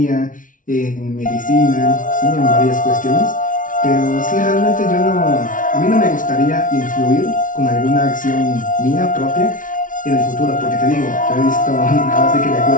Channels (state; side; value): late; right; 0.38 ms